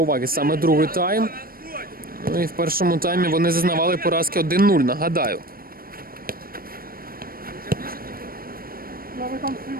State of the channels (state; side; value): late; left; 0.43 ms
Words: уваги саме другий тайм. Ну і в першому таймі вони зазнавали поразки 1-0, нагадаю.